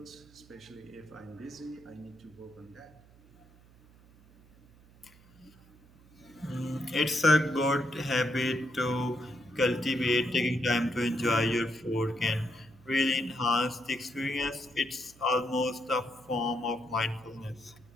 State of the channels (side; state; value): right; noise; hum, 26 dB below the sound